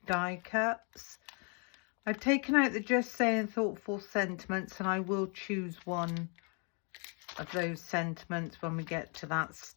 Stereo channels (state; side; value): quieter; right; 37.1 dB